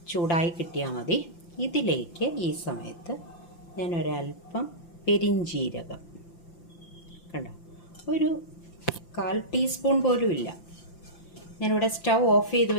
ചൂടായി കിട്ടിയാൽ മതി. ഇതിലേക്ക് ഈ സമയത്ത് ഞാൻ ഒരല്പം പെരിഞ്ജീരകം, കണ്ടോ, ഒരു 1/4 ടീസ്പൂൺ പോലും ഇല്ല. ഞാനിവിടെ സ്റ്റൗ ഓഫ് ചെയ്ത്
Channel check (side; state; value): right; late; 5.9 ms